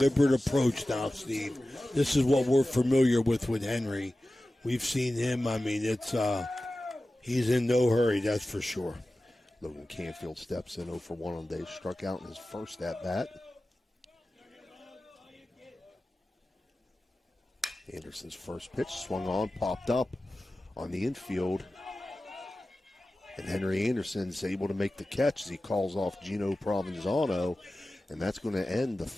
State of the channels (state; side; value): normal; both; correlation 0.95